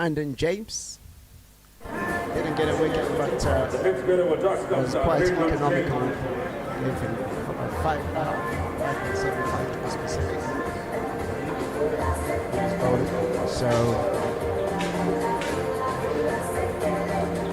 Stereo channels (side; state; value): both; identical; correlation 1.00